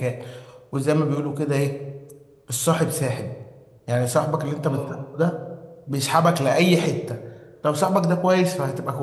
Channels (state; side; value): identical; both; correlation 1.00